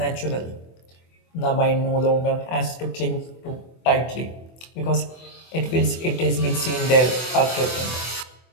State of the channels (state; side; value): late; right; 24 ms